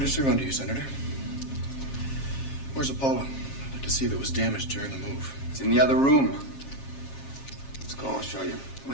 serve under you, Senator. Where's Apollo? I'd like to see if it was damaged during the move. It's in the other room. Let's go, I'll show you. It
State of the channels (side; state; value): right; late; 7.4 ms